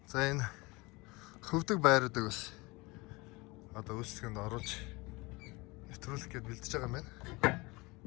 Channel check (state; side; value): quieter; right; 24.3 dB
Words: За энэ хөвдөг байруудыг бас одоо үйлчлэгэнд оруулж нэвтрүүлэх гээд бэлдэж байгаа юм байна.